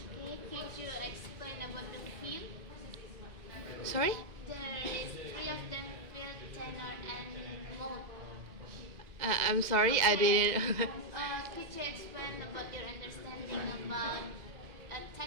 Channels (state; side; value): late; left; 2.1 ms